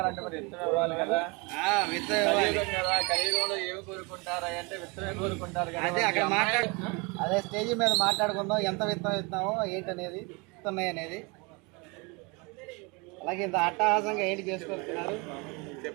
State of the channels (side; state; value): left; quieter; 28.9 dB